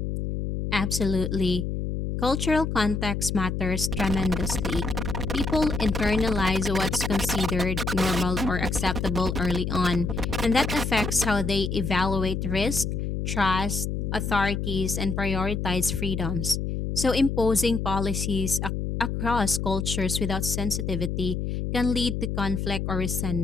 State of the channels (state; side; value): noise; left; hum, 2 dB below the sound